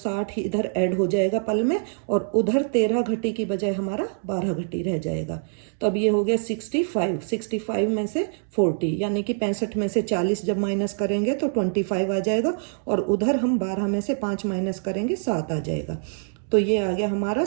ही इधर ऐड हो जाएगा पल में, और उधर 13 घटी की बजाय हमारा 12 घटी रह जाएगा। तो अब ये हो गया 65 में से 40 यानी कि 65 में से 40 जब माइनस करेंगे तो 25 आ जाएगा, और उधर हम 12 में से 5 माइनस करेंगे 7 आ जाएगा। तो ये आ गया हमारा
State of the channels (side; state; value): left; silent; digital silence